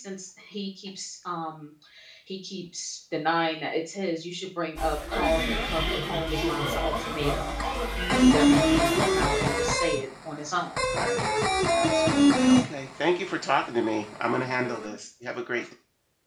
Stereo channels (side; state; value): both; identical; correlation 1.00